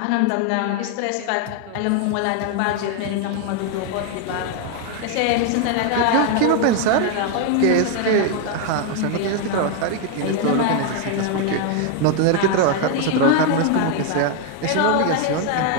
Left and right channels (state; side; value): different; both; correlation 0.01